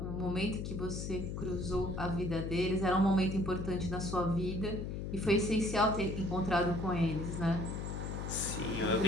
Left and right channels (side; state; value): left; noise; hum, 4 dB below the sound